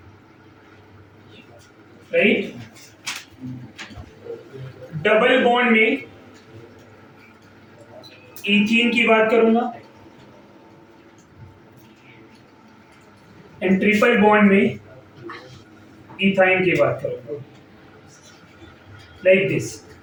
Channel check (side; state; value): both; identical; correlation 1.00